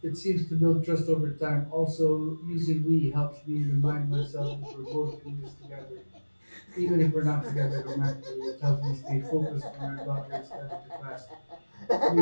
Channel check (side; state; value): both; inverted; correlation -1.00